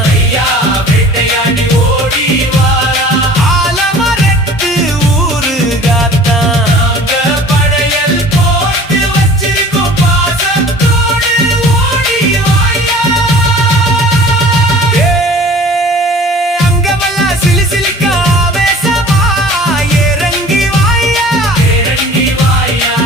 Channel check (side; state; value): both; normal; correlation 0.45